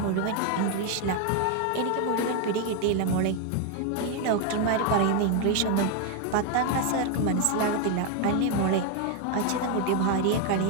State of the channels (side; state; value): both; different; correlation 0.01